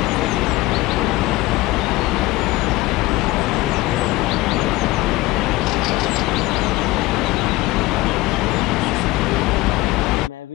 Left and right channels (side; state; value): right; quieter; 19.7 dB